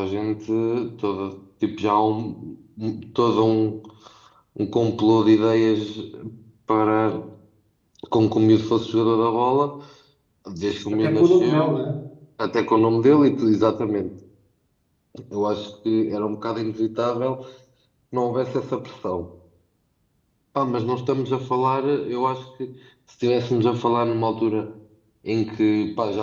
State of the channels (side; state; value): both; identical; correlation 1.00